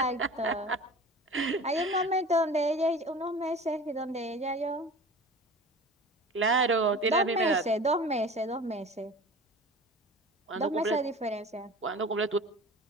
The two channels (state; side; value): normal; both; correlation 0.38